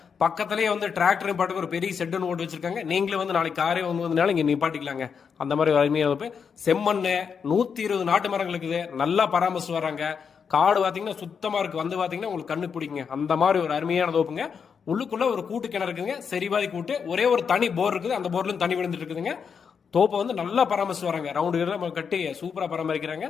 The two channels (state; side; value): quieter; right; 6.5 dB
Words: பக்கத்திலேயே வந்து டிராக்டர் பாட்டுக்கு ஒரு பெரிய ஷெட் ஒன்று ஓட்டு வச்சிருக்காங்க. நீங்களே வந்து நாளைக்கு காரே வந்ததுனால இங்க நிப்பாட்டிக்கலாங்க. அந்த மாதிரி ஒரு அருமையான தோப்பு. செம்மண்ணு 120 நாட்டு மரங்கள் இருக்குது. நல்லா பராமரிச்சு வராங்க. காடு பாத்தீங்கன்னா சுத்தமா இருக்கு. வந்து பாத்தீங்கன்னா உங்களுக்கு கண்ணு பிடிக்குங்க. அந்த மாதிரி ஒரு அருமையான தோப்புங்க. உள்ளுக்குள்ள ஒரு கூட்டு கிணறு இருக்குங்க. சரிவாதி கூட்டு. ஒரே ஒரு தனி போர் இருக்குது. அந்த போர்ல தண்ணி விழுந்துட்டு இருக்குதுங்க. தோப்பை வந்து நல்லா பராமரிச்சு வராங்க. ரவுண்டு கட்டி சூப்பரா பராமரிக்கிறாங்க.